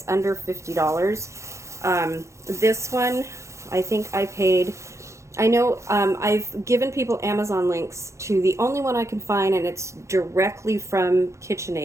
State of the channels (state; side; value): late; left; 0.14 ms